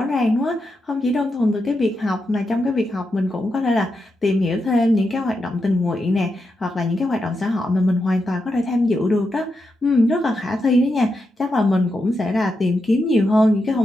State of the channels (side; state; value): both; normal; correlation 0.86